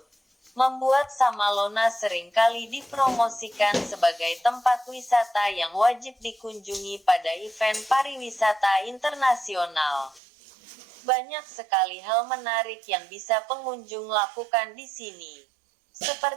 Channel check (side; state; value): left; drops out; at 10.2 s